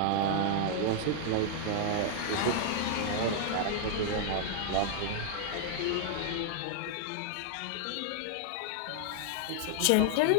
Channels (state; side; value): different; both; correlation -0.01